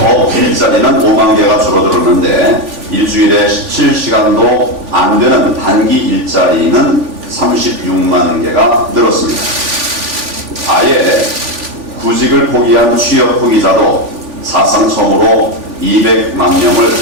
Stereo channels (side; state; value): left; late; 3.5 ms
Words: 일자리는 5만 개가 줄어들었는데 일주일에 17시간도 안 되는 단기 일자리는 36만 개가 늘었습니다. 아예 구직을 포기한 취업 포기자도 사상 처음으로 200만 명을